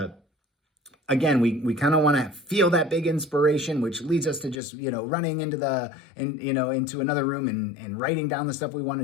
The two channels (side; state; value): right; drops out; at 4.5 s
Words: again, we kind of want to feel that big inspiration, which leads us to just, running into into another room and writing down the stuff we want